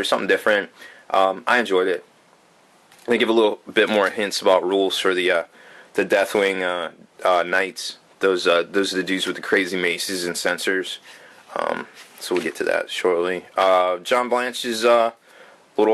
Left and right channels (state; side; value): identical; both; correlation 1.00